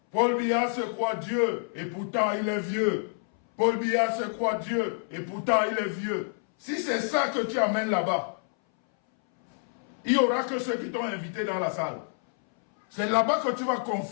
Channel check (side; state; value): right; silent; 60 dB below the other